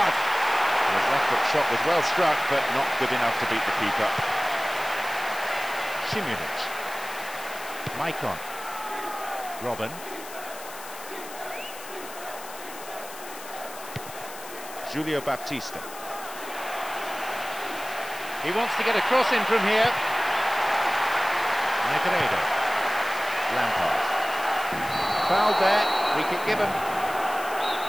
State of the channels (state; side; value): noise; left; hiss, 14 dB below the sound